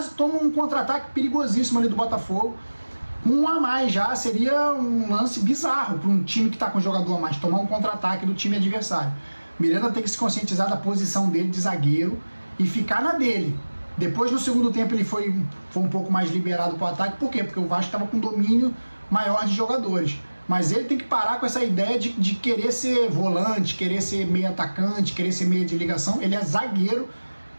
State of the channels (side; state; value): both; inverted; correlation -1.00